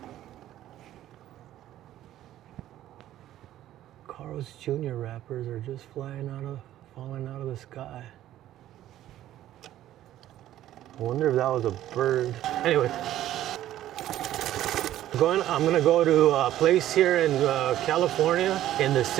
Carl's Jr. wrappers are just falling out of the sky. I wonder if that was a bird. Anyway, I'm gonna go to a place here in California, in the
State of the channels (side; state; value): left; quieter; 13.0 dB